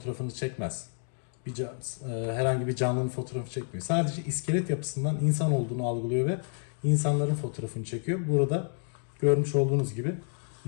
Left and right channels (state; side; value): silent; right; 58 dB below the other